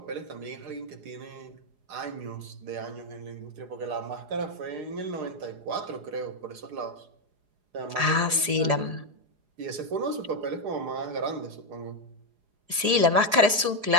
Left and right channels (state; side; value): late; left; 4.8 ms